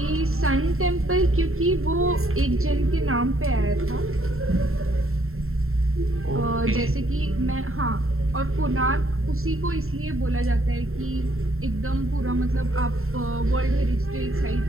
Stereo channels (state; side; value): late; left; 0.62 ms